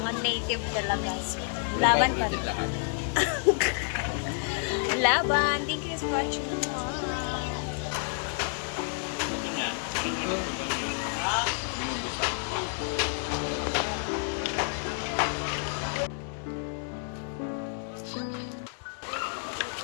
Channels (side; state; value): right; silent; 58 dB below the other